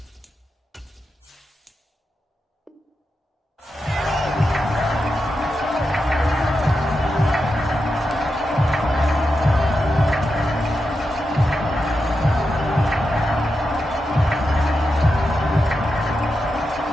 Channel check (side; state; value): both; normal; correlation 0.88